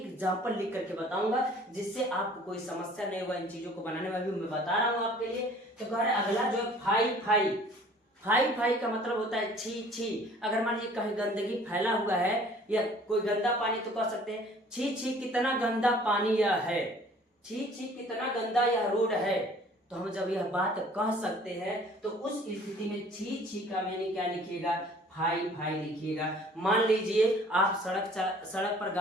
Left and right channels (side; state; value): both; normal; correlation 0.52